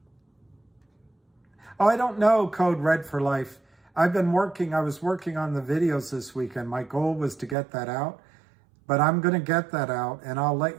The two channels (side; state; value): left; drops out; at 7.6 s